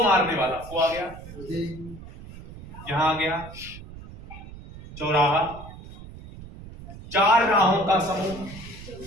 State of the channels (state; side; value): noise; right; rumble, 15 dB below the sound